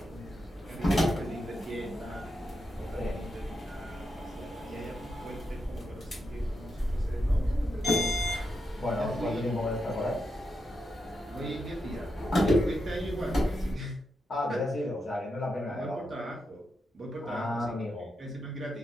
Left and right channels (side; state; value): both; normal; correlation 0.85